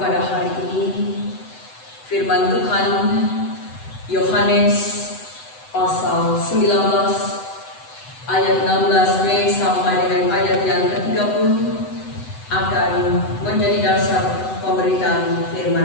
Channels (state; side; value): late; right; 7.9 ms